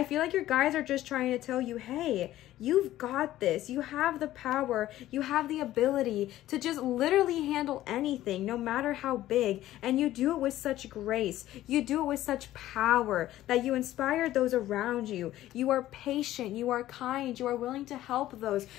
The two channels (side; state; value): right; quieter; 14.3 dB